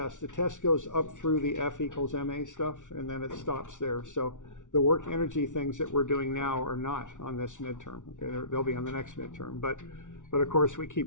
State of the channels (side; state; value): right; late; 0.87 ms